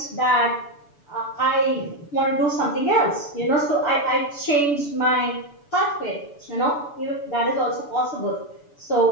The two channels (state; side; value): late; right; 6.9 ms